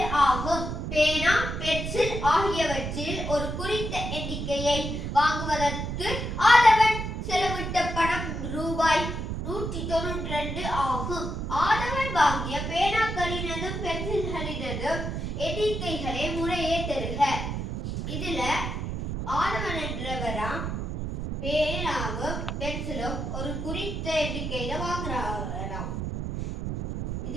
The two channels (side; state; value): right; noise; rumble, 4 dB below the sound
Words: ஆகும். பேனா, பென்சில் ஆகியவற்றில் ஒரு குறித்த எண்ணிக்கையை வாங்குவதற்கு ஆதவன் செலவிட்ட பணம் ரூபாய் 192 ஆகும். ஆதவன் வாங்கிய பேனாக்களினதும் பென்சில்களினதும் எண்ணிக்கைகளை முறையே தருக. இதுல ஆதவன் என்றவராம் பேனாவும் பென்சிலும் ஒரு குறித்த எண்ணிக்கையில வாங்குறாராம்.